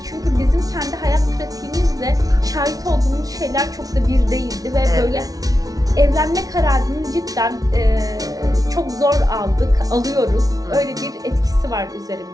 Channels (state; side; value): late; left; 0.18 ms